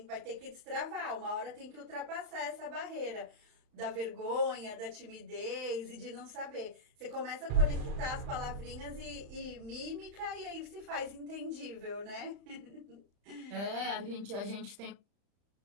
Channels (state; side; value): late; left; 35 ms